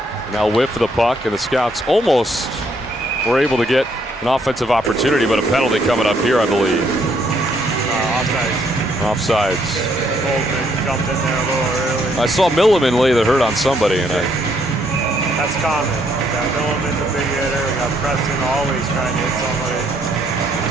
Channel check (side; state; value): both; normal; correlation 0.70